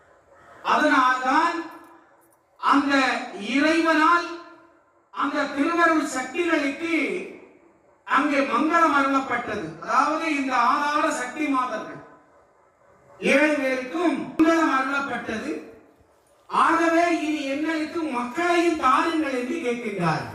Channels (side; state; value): both; identical; correlation 1.00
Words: அதனால்தான் அந்த இறைவனால் அந்த திருவருள் சக்திகளுக்கு அங்கே மங்களம் அருளப்பட்டது. அதாவது இந்த ஆதார சக்தி மாதர்கள் 7 பேருக்கும் மங்களம் அருளப்பட்டது. ஆகவே இனி எங்களுக்கு மக்களையும் தாருங்கள் என்று கேட்கின்றார்.